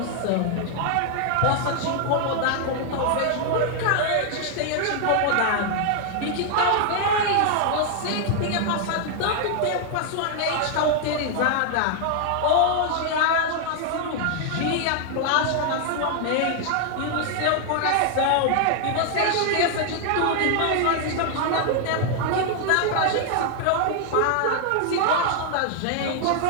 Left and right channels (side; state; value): both; different; correlation 0.00